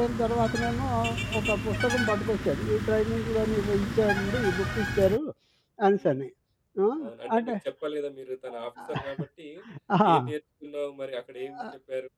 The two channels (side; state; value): both; identical; correlation 1.00